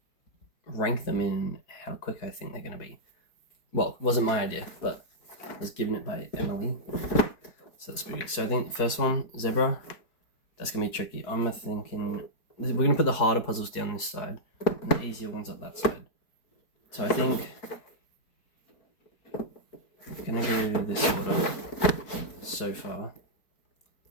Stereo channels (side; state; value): right; late; 4.7 ms